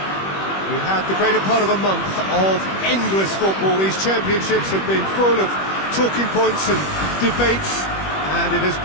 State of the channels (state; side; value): late; right; 21 ms